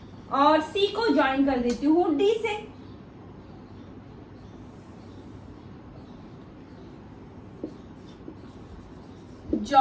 और सी को ज्वाइन कर देती हूँ डी से।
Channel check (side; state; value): both; identical; correlation 1.00